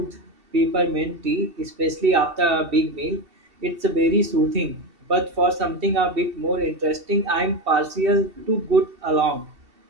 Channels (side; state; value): left; late; 2.7 ms